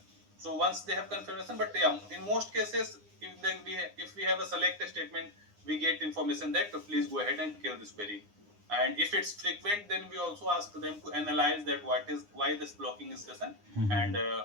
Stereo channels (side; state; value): left; late; 9.8 ms